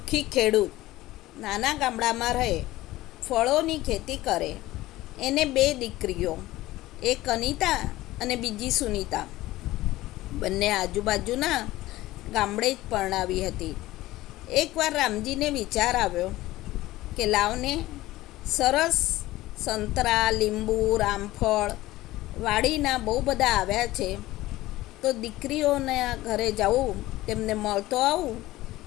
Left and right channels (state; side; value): quieter; right; 17.1 dB